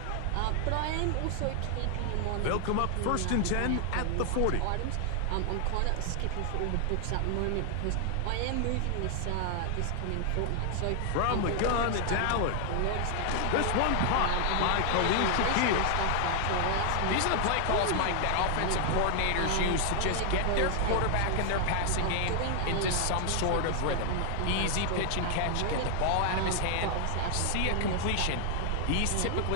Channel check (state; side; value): different; both; correlation 0.00